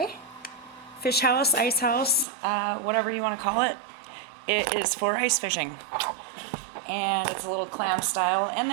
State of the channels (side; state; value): left; drops out; at 2.2 s